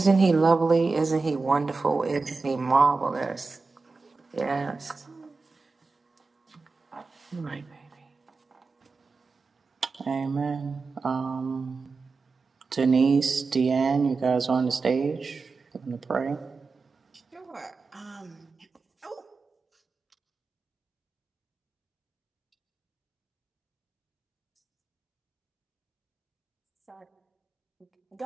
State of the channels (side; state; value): left; quieter; 4.2 dB